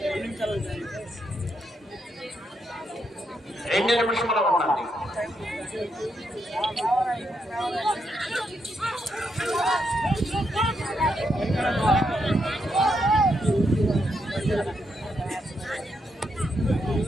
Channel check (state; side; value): normal; both; correlation 0.80